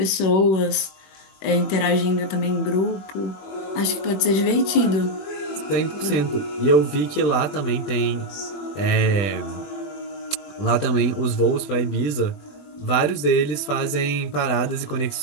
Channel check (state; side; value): late; right; 21 ms